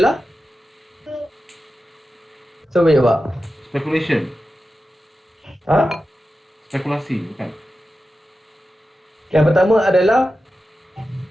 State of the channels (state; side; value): normal; both; correlation 0.92